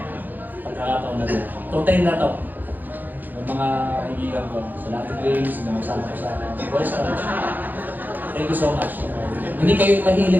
Pagkakataon na ito. Itong time na ito, ng mga kaibigan ko, sa Latin Games, na magsama ko sa Boys College. Thank you so much. Hindi kayo mahilig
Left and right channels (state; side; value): late; left; 0.086 ms